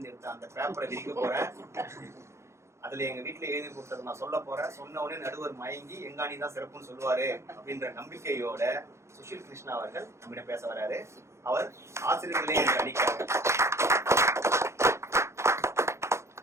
எடுத்த அந்த பேப்பரை விரிக்க போறேன், அதுல எங்க வீட்டுல எழுதி கொடுத்தது நான் சொல்ல போறேன், சொன்ன உடனே நடுவர் மயங்கி எங்காணி தான் சிறப்புன்னு சொல்லுவாரு அப்படின்ற நம்பிக்கையோட சுஷீல் கிருஷ்ணா அவர்கள் நம்மிடம் பேச வராரு. அவர் ஆசிரியர்களே என்று அடிக்கிறார்.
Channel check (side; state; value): left; late; 0.13 ms